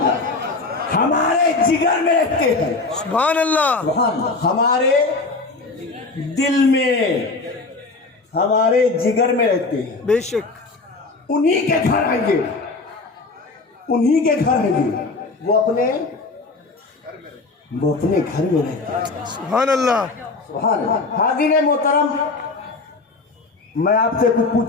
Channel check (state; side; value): quieter; right; 3.7 dB